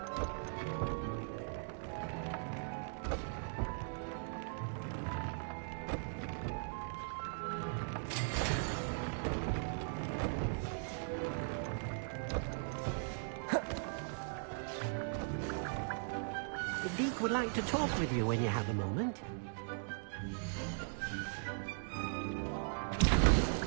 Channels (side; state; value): left; silent; digital silence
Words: Duke would like to talk with you when you have a moment.